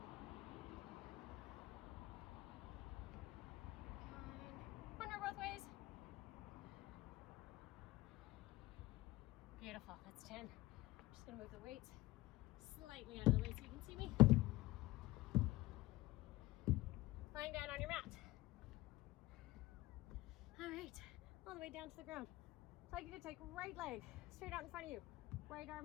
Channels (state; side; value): quieter; right; 18.6 dB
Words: 9. One more both ways. Beautiful. That's 10. I'm just going to move the weights slightly out of the way so you can see me. Lying down on your mat. All right, all the way down to the ground. So I'd like you to take right leg straight out in front of you. Right